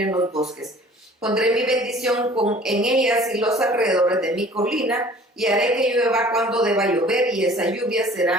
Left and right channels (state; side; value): normal; both; correlation 0.50